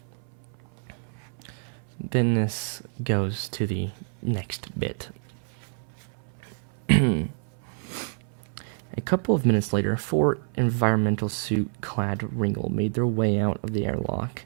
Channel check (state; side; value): silent; left; 60 dB below the other